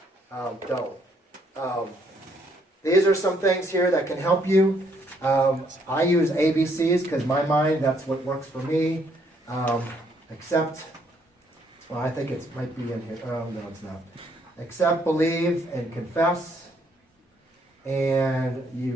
Don't. These are some things here that can help you. I use ABCs because my mind, that's what works for me. Accept, well, I think it might be in here. Oh, no, it's not. Accept, believe, and confess. And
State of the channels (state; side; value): normal; both; correlation 0.69